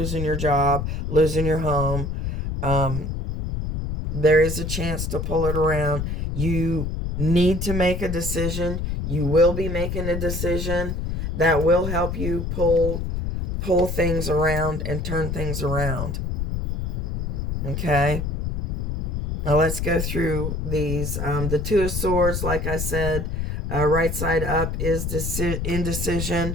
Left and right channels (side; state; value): left; noise; rumble, 3 dB below the sound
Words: your job, losing your home, there is a chance to pull it around. You need to make a decision. You will be making a decision that will help you pull things around and turn things around. Okay? Now let's go through these. The Two of Swords, like I said, right side up is